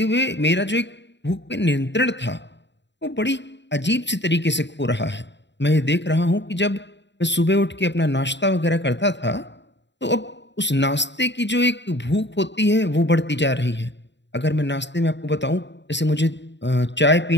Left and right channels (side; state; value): right; late; 0.52 ms